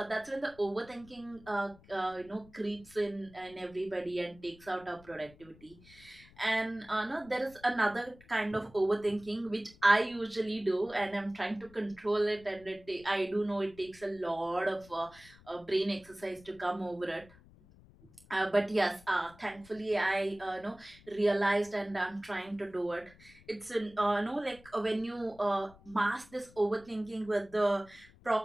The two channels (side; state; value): left; noise; rumble, 24 dB below the sound